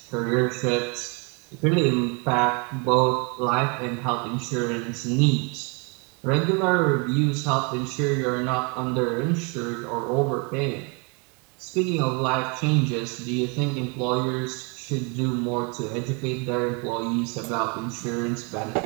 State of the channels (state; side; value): quieter; left; 32.9 dB